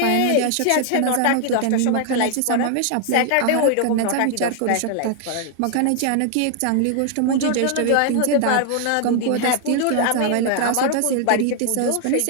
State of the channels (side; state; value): both; different; correlation 0.00